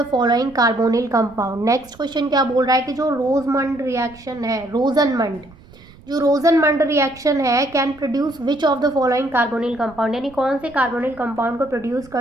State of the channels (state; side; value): noise; right; rumble, 24 dB below the sound